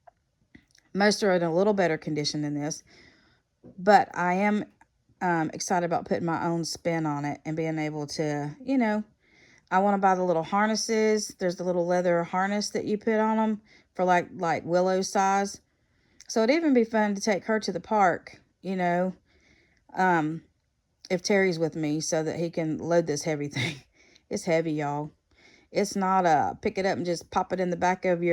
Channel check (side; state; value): both; identical; correlation 1.00